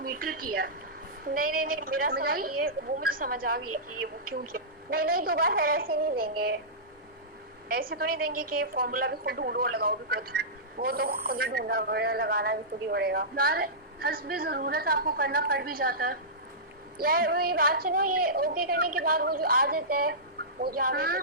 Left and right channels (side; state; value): both; normal; correlation -0.18